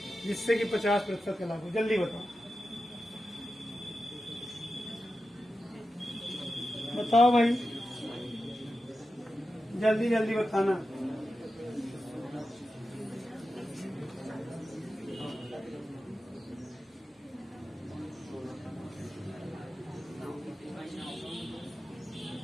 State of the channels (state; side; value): normal; both; correlation 0.91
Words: जिससे कि 50% का लाभ हो, जल्दी बताओ। बताओ भाई, जल्दी जल्दी बताना।